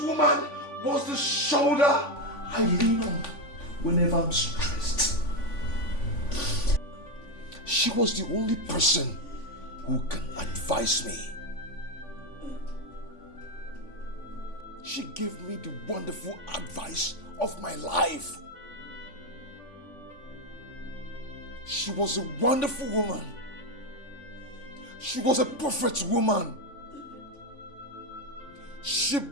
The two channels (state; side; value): late; right; 3.5 ms